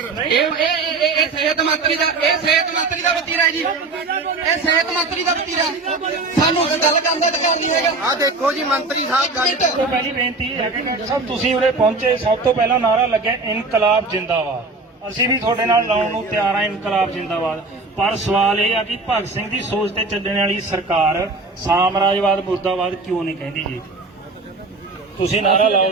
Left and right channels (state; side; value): quieter; left; 3.5 dB